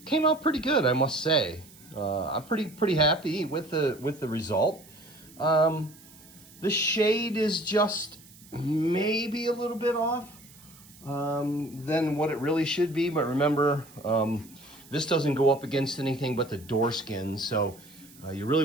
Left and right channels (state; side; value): noise; right; hiss, 23 dB below the sound